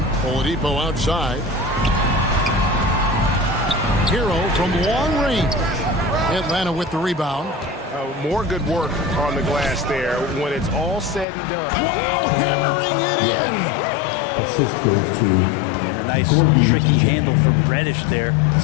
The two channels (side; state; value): right; drops out; at 11.2 s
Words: Oladipo outside. Hero from long range. Atlanta with the rebound. More good work on the glass there when it's all said and done. Wow, hammering it in. Assist goes to... And a nice tricky handle from Reddish there,